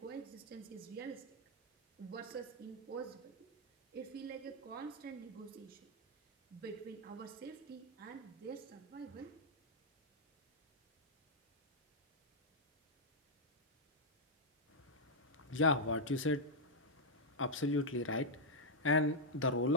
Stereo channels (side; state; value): both; normal; correlation -0.04